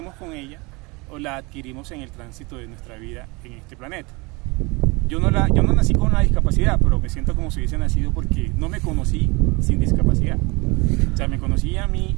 con ella o la adquirimos en el tránsito de nuestra vida en este planeta. Yo no nací con una discapacidad, pero me siento como si hubiese nacido porque no me conocí sin discapacidad. O sea, me conocí a mí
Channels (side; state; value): left; quieter; 26.4 dB